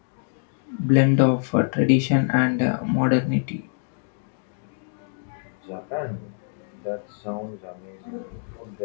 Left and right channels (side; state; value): right; silent; digital silence